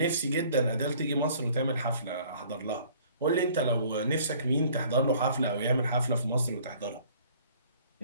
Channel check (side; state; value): both; inverted; correlation -0.55